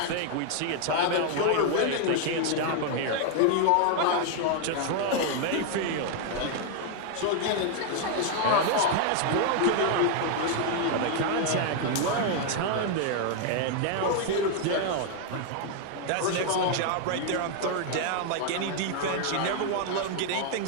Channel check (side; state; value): both; different; correlation 0.00